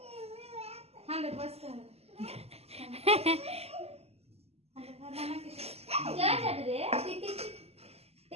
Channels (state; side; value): late; left; 0.29 ms